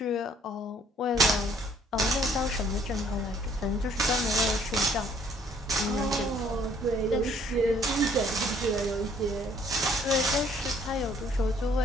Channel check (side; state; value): both; normal; correlation 0.61